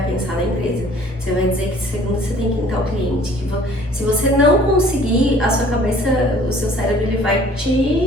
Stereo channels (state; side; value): normal; both; correlation 0.53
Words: pensar na empresa, você vai dizer que segunda você tem que entrar o cliente, que se você não conseguir, a sua cabeça, o seu cérebro, ele vai